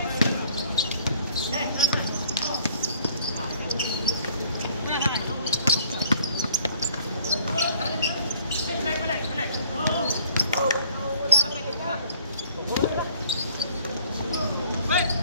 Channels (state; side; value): inverted; both; correlation -0.58